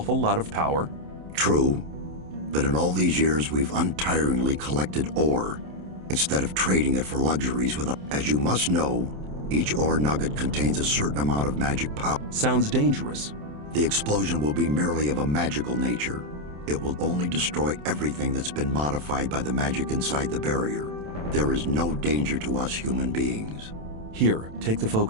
lot of power? True. But in all these years, we've untiringly collected ore, instead of trading it for luxuries with As you must know, each ore nugget contains a certain amount of magic power. Sounds dangerous. The explosion will be merely of a magical nature. It will only destroy everything that's been modified by the magic inside the barrier. There is no danger to us human beings. Here, take the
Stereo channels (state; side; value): late; left; 27 ms